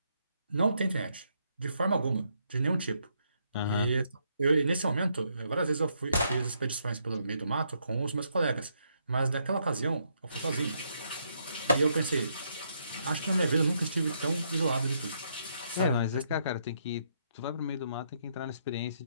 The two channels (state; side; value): inverted; both; correlation -0.75